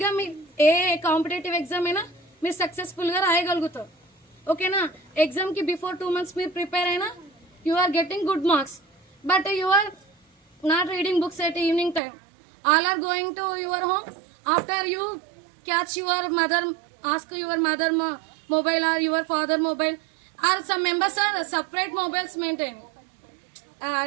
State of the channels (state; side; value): drops out; left; at 12.0 s